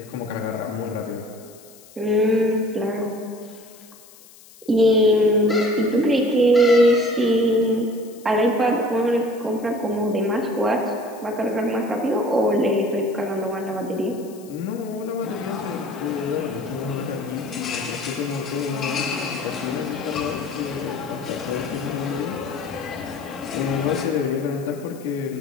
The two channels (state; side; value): noise; left; hiss, 23 dB below the sound